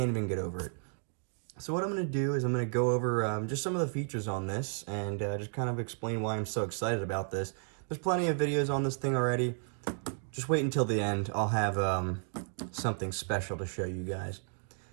even get over it. So what I'm going to do is I'm going to go over just some of the features on this and just kind of explain why I'm so excited about this. There's plenty of videos on this thing already. Just wait until the end. I'll have something special to show you guys.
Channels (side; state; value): left; silent; 56 dB below the other